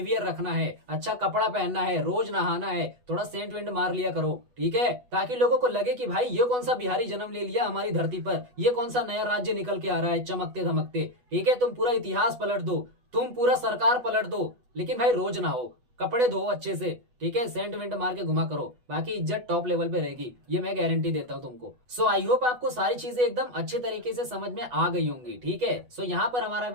रखना है, अच्छा कपड़ा पहनना है, रोज नहाना है, थोड़ा सेंट वेंट मार लिया करो। ठीक है, ताकि लोगों को लगे कि भाई ये कौन सा बिहारी जन्म ले लिया हमारी धरती पर, ये कौन सा नया राज्य निकल के आ रहा है चमकते धमकते। ठीक है, तुम पूरा इतिहास पलट दो, तुम पूरा सरकार पलट दो, लेकिन भाई रोज नहाओ, कपड़े धो अच्छे से। ठीक है, सेंट वेंट मार के घुमा करो, बाकी इज्जत टॉप लेवल पे रहेगी, ये मैं गारंटी देता हूं तुमको। सो आई होप आपको सारी चीजें एकदम अच्छे तरीके से समझ में आ गई होंगी। ठीक है, सो यहाँ पर हमारा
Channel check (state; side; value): late; left; 8.1 ms